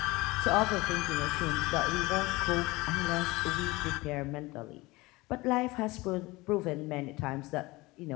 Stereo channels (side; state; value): right; quieter; 21.7 dB